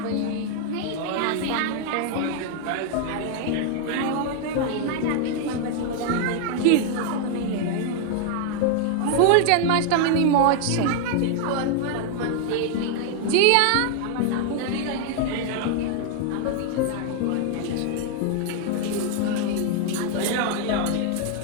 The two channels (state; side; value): different; both; correlation 0.00